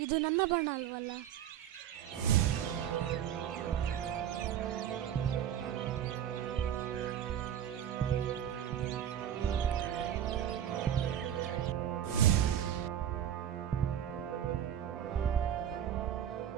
ಇದು ನನ್ನ ಬಣ್ಣ ಅಲ್ವಲ್ಲ?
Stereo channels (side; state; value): left; quieter; 10.0 dB